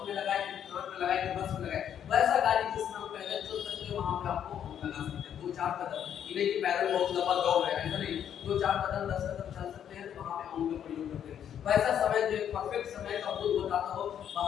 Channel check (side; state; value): right; quieter; 9.3 dB